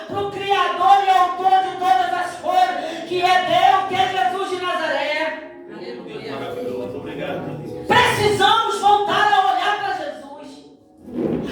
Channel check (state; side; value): identical; both; correlation 1.00